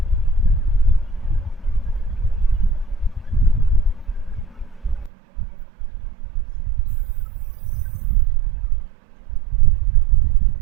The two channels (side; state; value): left; drops out; at 5.1 s